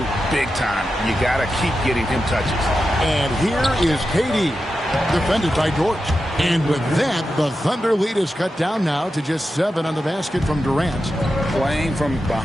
big time. You got to keep getting him touches. And here is KD, defended by Dort. And with that, the Thunder lead is cut down now to just 7 on the basket from Durant. Playing from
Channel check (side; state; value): both; normal; correlation 0.90